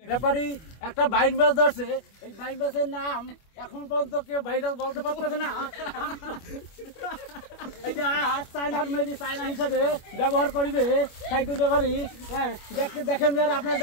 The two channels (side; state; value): right; late; 25 ms